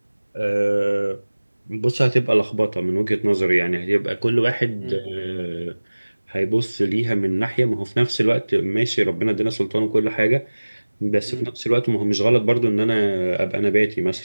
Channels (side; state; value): both; inverted; correlation -1.00